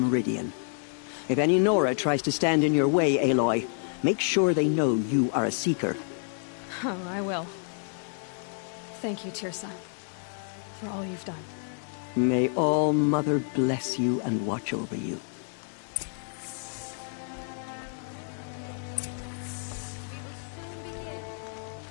If any Nora tries to stand in your way, Aloy, make sure they know you are a Seeker. Oh, I will. Thank you, Tirsa, for all you've done. May All-Mother bless you and watch over you. Nora Faithful, we will soon begin.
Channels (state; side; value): silent; right; 59 dB below the other